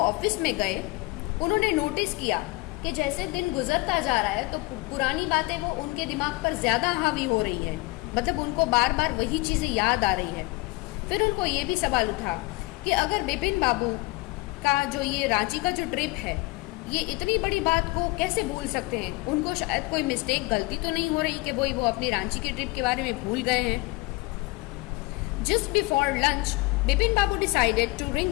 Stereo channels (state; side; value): quieter; right; 23.6 dB